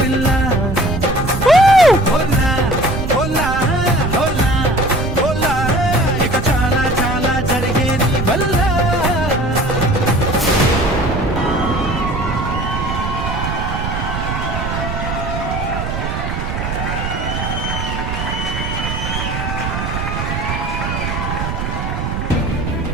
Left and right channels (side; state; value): right; noise; rumble, 3 dB below the sound